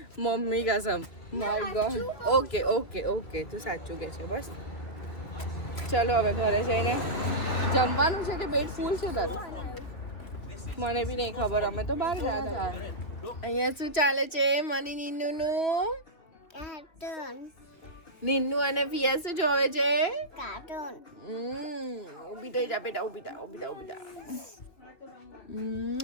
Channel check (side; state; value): right; late; 2.9 ms